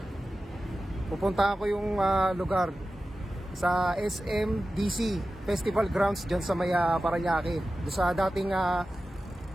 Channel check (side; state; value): both; normal; correlation 0.94